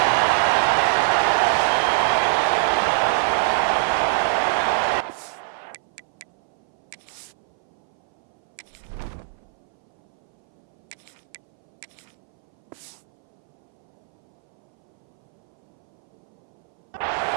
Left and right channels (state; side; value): silent; left; 59 dB below the other